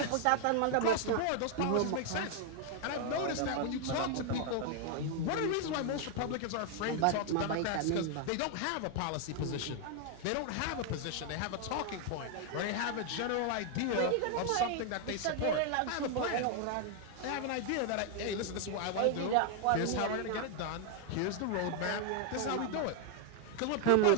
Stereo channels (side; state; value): both; different; correlation 0.00